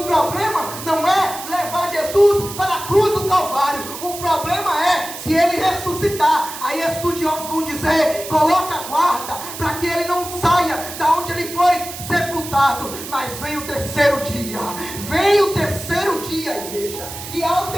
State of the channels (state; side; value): noise; right; hiss, 10 dB below the sound